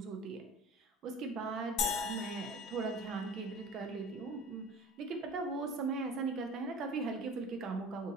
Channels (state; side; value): normal; both; correlation 0.40